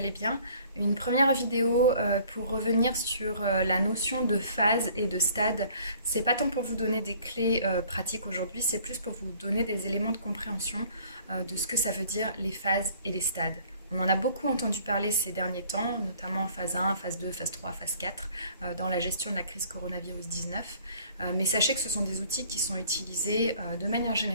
bien. Une première vidéo pour revenir sur la notion de phase et de stade. C'est pas tant pour vous donner des clés pratiques aujourd'hui, c'est plus pour vous donner des éléments de compréhension de ce que ça veut dire les phases et les stades. On en a beaucoup entendu parler ces derniers temps, notamment phase 1, phase 2, phase 3, phase 4, dans la gestion de la crise coronavirus 19. Mais sachez que ce sont des outils qui sont utilisés de manière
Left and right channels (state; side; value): inverted; both; correlation -0.56